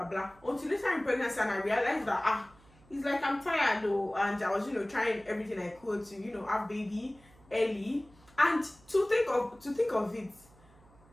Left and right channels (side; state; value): right; noise; hum, 27 dB below the sound